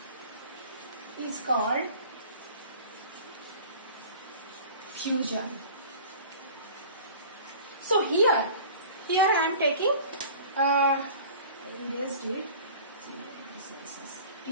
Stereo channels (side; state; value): both; inverted; correlation -0.43